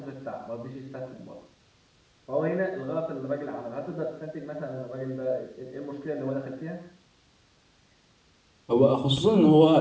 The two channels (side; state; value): both; identical; correlation 1.00